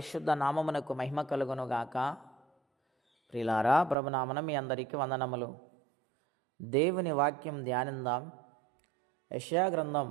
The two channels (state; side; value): drops out; left; at 4.0 s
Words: నామమునకు మహిమ కలుగునుగాక. ప్రియులారా, ప్రభునామన మీ అందరికీ వందనములు. దేవుని వాక్యం ధ్యానిందాం. యెషయా గ్రంథం